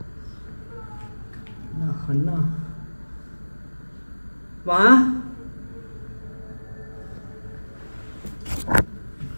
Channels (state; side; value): inverted; both; correlation -1.00